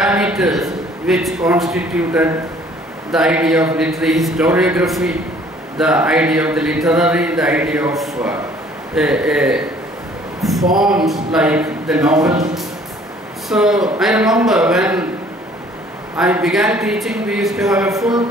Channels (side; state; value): both; normal; correlation 0.56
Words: which constituted the idea of literary historiography, the idea of the literary, the idea of forms like the novel. So I remember when I began teaching, we used to have a full